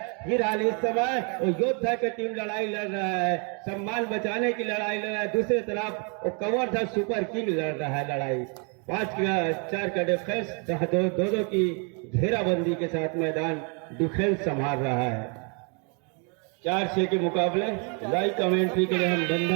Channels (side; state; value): left; quieter; 36.3 dB